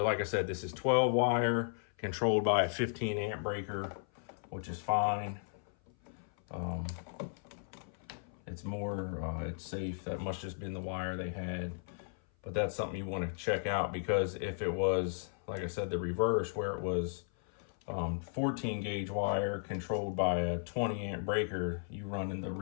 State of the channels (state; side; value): silent; right; 54 dB below the other